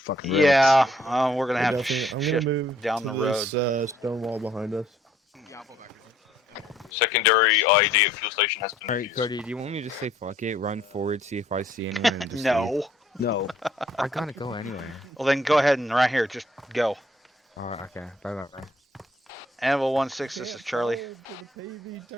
rails. Yeah, we're gonna have to I'm gonna shift move down to the road. this stone wall behind us. Secondary IED at fuel station has been Alright, Cody, do you want me to just say fuck it, run forward, see if I see anyone, and just No. leave? No. I gotta go anyway. Well, then go ahead and right here, just go. Okay. Bye. Anvil 16, this is Charlie.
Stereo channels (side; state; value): both; normal; correlation 0.63